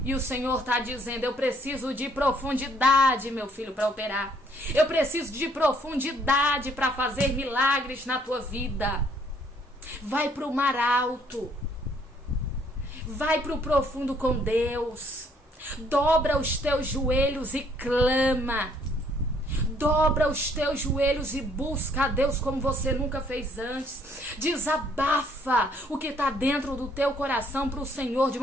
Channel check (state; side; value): normal; both; correlation 0.64